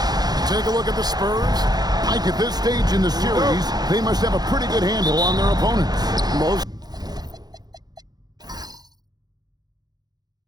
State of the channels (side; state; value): left; late; 0.19 ms